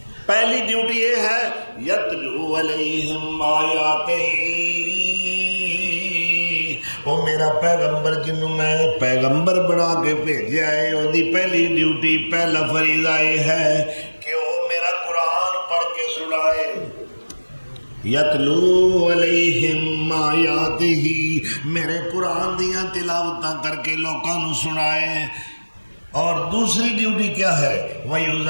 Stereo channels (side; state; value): both; inverted; correlation -1.00